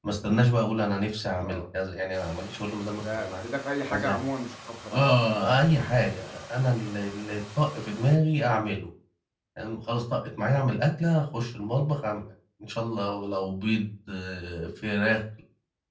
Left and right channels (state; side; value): identical; both; correlation 1.00